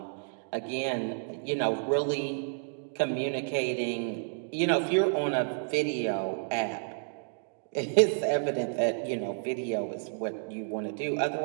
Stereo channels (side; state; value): left; silent; digital silence